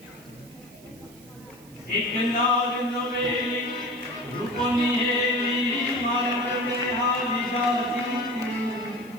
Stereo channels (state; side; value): noise; right; hiss, 24 dB below the sound